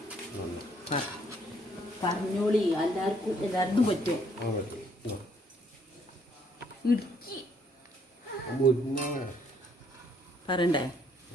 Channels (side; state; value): both; normal; correlation 0.67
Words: പറഞ്ഞോളി, എല്ലാവർക്കും പറ്റും. ഇടുക്കി പറയണ്ടേ?